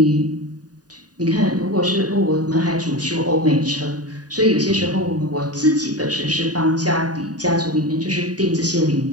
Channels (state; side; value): late; left; 0.68 ms